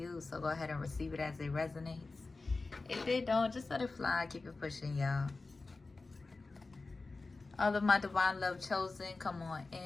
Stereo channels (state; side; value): quieter; right; 3.6 dB